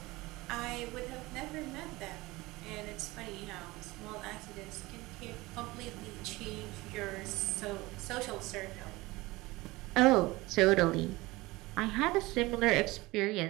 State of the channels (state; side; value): quieter; left; 20.9 dB